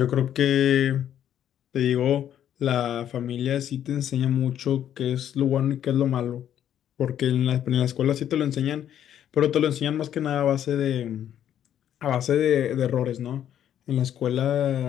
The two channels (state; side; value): quieter; right; 10.4 dB